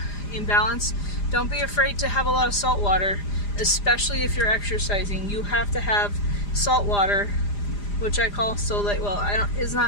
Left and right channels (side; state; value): right; late; 4.9 ms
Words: in balance. Don't be afraid to have a lot of salt water, especially if you're exercising. You have to have salt water, which I call Solate. Well, it's